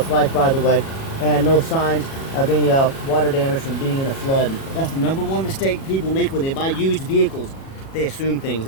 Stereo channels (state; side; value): late; right; 37 ms